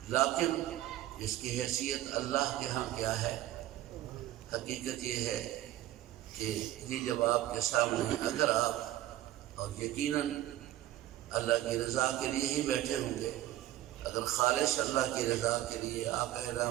لیکن اس کی حیثیت اللہ کے ہاں کیا ہے؟ حقیقت یہ ہے کہ یہ جب آپ کے سامنے اگر آپ اور یقیناً اللہ کی رضا کے لیے ہی بیٹھے ہوں گے، اگر خالص اللہ کی رضا کے لیے آقا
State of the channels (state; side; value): quieter; left; 14.3 dB